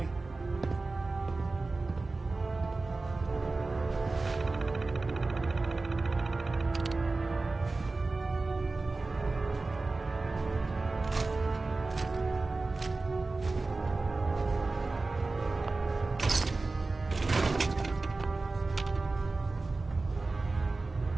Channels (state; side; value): quieter; left; 3.5 dB